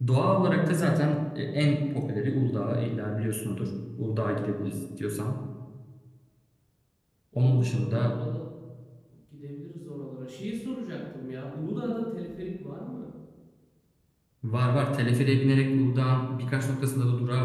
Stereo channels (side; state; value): both; identical; correlation 1.00